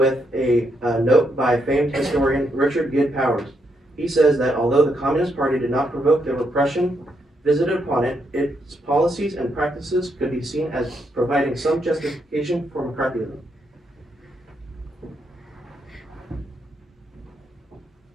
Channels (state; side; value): normal; both; correlation 0.78